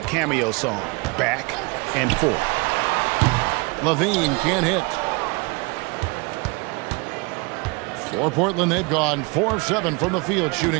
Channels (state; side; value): quieter; left; 28.6 dB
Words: cameo song, Back and Forth. Levine can't hit. For Portland, they've gone 4 of 7 from the field,